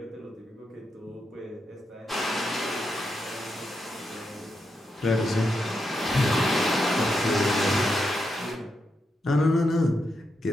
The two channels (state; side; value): normal; both; correlation 0.84